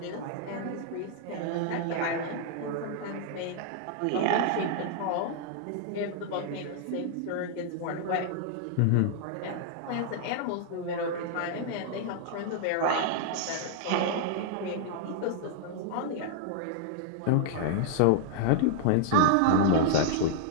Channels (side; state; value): both; different; correlation -0.01